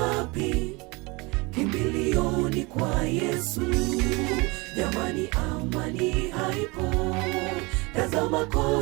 Kimbilio ni kwa Yesu. Jamani, amani haipo, tazama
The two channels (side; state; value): left; quieter; 26.1 dB